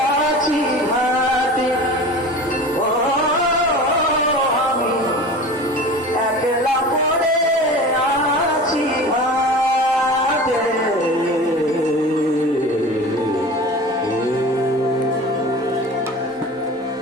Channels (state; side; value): normal; both; correlation 0.36